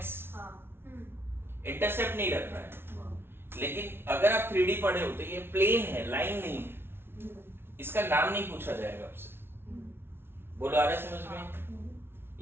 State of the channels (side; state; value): left; late; 0.11 ms